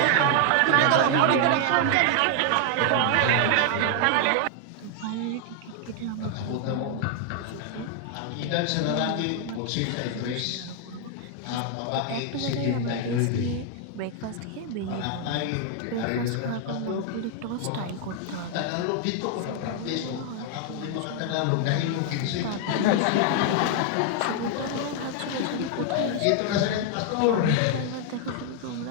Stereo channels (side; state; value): both; different; correlation 0.00